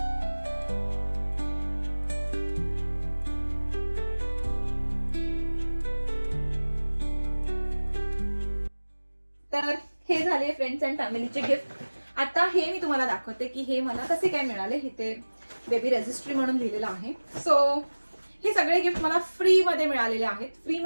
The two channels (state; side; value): inverted; both; correlation -1.00